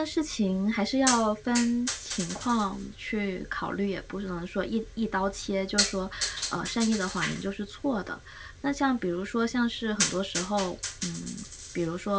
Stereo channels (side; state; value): both; identical; correlation 1.00